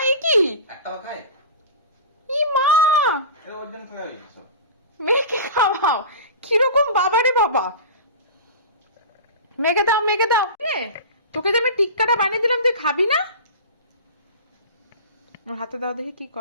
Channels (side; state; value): both; inverted; correlation -0.32